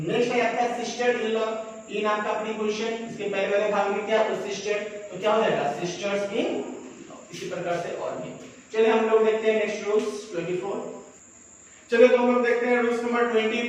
है आपका सिस्टर इन लॉ। इन आपका प्रीपोजिशन, इसके पहले वाले भाग में क्या? तो सिस्टर, तो क्या हो जाएगा? सिस्टर्स इन। इसी प्रकार से और भी। चलिए हम लोग देखते हैं नेक्स्ट रूल्स 24। चलिए तो हम लोग देखते हैं रूल्स नंबर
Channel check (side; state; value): both; identical; correlation 1.00